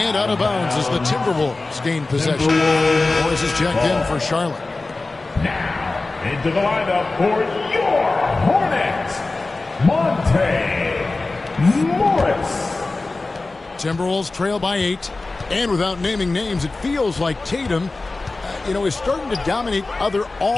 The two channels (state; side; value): quieter; right; 3.4 dB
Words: out of bounds as the Timberwolves gain possession. Morris is checked in for Charlotte. Now into the lineup for your Hornets, Monte Morris. Timberwolves trail by 8. And without naming names, it feels like Tatum, is starting to dominate other